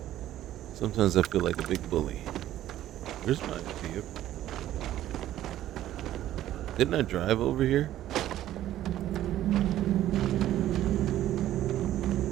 Sometimes I feel like a big bully. Where's my vehicle? Didn't I drive over here?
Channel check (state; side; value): quieter; left; 13.1 dB